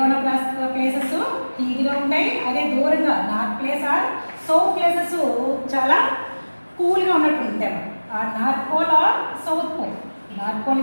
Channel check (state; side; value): inverted; both; correlation -1.00